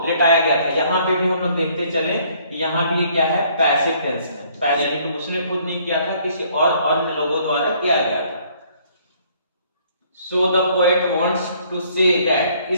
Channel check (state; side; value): inverted; both; correlation -0.62